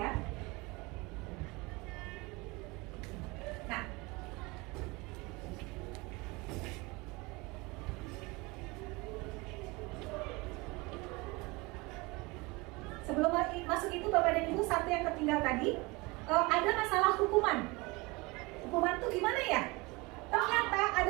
Nah, sebelum masuk itu Bapak dan Ibu, satu yang tertinggal tadi, ada masalah hukuman. Hukuman itu gimana ya? Ternyata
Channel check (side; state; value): left; quieter; 24.7 dB